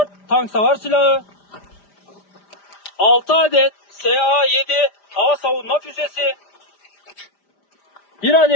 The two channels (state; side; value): late; right; 5.0 ms